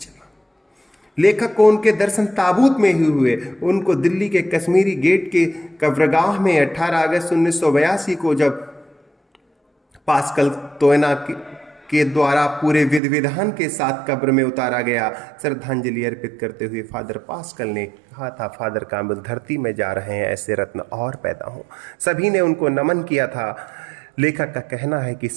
लेखक को उनके दर्शन ताबूत में ही हुए। उनको दिल्ली के कश्मीरी गेट के कब्रगाह में 18 अगस्त 1982 को जब पास्कल तोयना के द्वारा पूरे विधि विधान के साथ कब्र में उतारा गया। श्रद्धांजलि अर्पित करते हुए फादर पास्कल ने कहा था, फादर काम्बल धरती में जा रहे हैं, ऐसे रत्न और पैदा हों। सभी ने उनको नमन किया था। लेखक का कहना है कि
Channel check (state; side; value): drops out; left; at 13.0 s